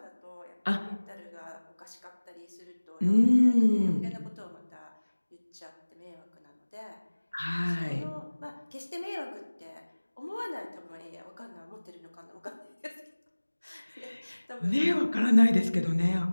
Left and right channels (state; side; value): inverted; both; correlation -1.00